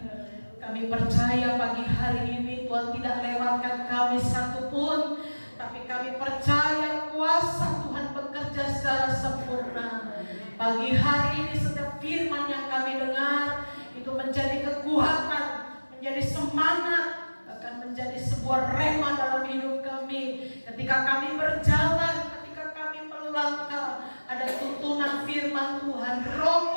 Kami percaya pagi hari ini Tuhan tidak lewatkan kami satupun, tapi kami percaya kuasa Tuhan bekerja secara sempurna. Pagi hari ini setiap firman yang kami dengar itu menjadi kekuatan, menjadi semangat, bahkan menjadi sebuah rema dalam hidup kami. Ketika kami berjalan, ketika kami melangkah, ada tuntunan firman Tuhan, Roh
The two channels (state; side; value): inverted; both; correlation -1.00